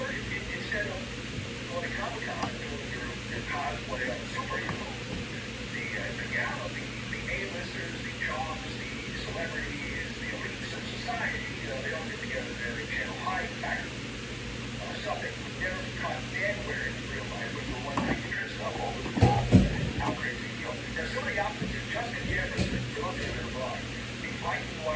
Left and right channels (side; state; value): both; identical; correlation 1.00